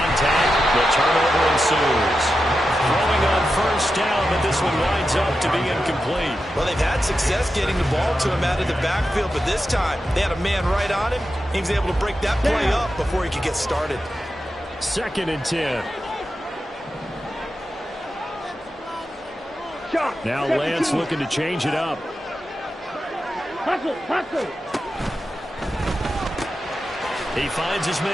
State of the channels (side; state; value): both; normal; correlation 0.90